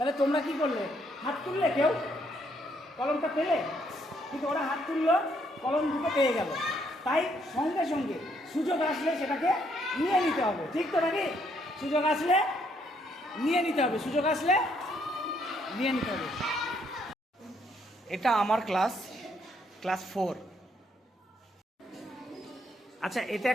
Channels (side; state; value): both; normal; correlation 0.71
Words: তোমরা কি করলে? হাত তুললে, কেউ কলমটা পেলে, কিন্তু ওরা হাত তুললো, কলম দুটো পেয়ে গেল। তাই সঙ্গে সঙ্গে সুযোগ আসলে সেটাকে নিয়ে নিতে হবে, ঠিক তো নাকি? সুযোগ আসলে নিয়ে নিতে হবে, সুযোগ আসলে নিয়ে নিতে হবে। এটা আমার ক্লাস 4। আচ্ছা, এটা